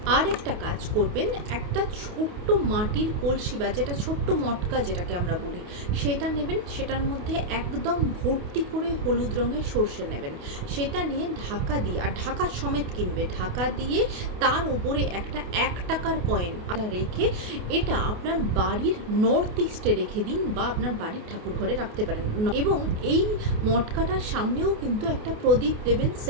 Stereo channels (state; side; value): late; left; 28 ms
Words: আর একটা কাজ করবেন, একটা ছোট্ট মাটির কলসি বা যেটা ছোট্ট মটকা যেটাকে আমরা বলি, সেটা নেবেন। সেটার মধ্যে একদম ভর্তি করে হলুদ রঙের সর্ষে নেবেন। সেটা নিয়ে ঢাকা দিয়ে, আর ঢাকা সমেত কিনবে, ঢাকা দিয়ে তার উপরে একটা 1 টাকার কয়েন রেখে এটা আপনার বাড়ির নর্থ ইস্টে রেখে দিন, বা আপনার বাড়ির ঠাকুর ঘরে রাখতে পারেন। এবং এই মটকাটার সামনেও কিন্তু একটা প্রদীপ দেবেন